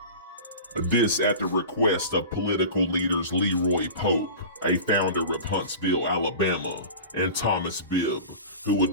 This at the request of political leaders Leroy Pope, a founder of Huntsville, Alabama, and Thomas Bibb, who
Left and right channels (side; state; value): both; inverted; correlation -0.35